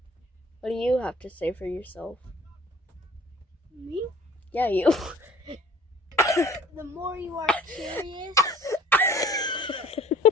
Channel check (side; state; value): both; normal; correlation 0.51